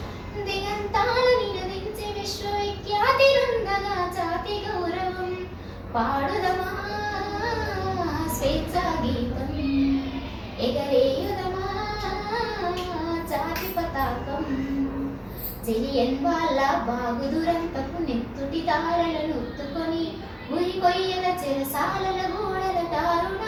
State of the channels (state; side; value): identical; both; correlation 1.00